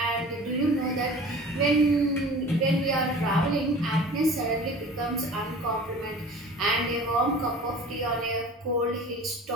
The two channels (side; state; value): both; normal; correlation 0.42